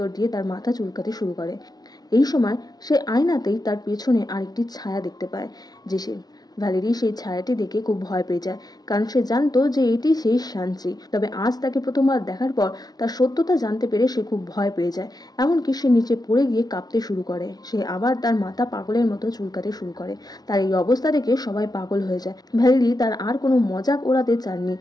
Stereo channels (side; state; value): right; late; 0.19 ms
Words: দিয়ে তার মাথা চুলকাতে শুরু করে। এই সময় সে আয়নাতেই তার পেছনে আরেকটি ছায়া দেখতে পায়, যে সে ভ্যালেরি সেই ছায়াটি দেখে খুব ভয় পেয়ে যায়, কারণ সে জানতো যে এটি সেই শাঞ্চি। তবে আজ তাকে প্রথমবার দেখার পর তার সত্যতা জানতে পেরে সে খুব ভয় পেয়ে যায়। এমনকি সে নিচে পড়ে গিয়ে কাঁপতে শুরু করে। সে আবার তার মাথা পাগলের মতো চুলকাতে শুরু করে। তার এই অবস্থা দেখে সবাই পাগল হয়ে যায়। ভ্যালেরি তার আর কোনো মজাক ওড়াতে চাননি,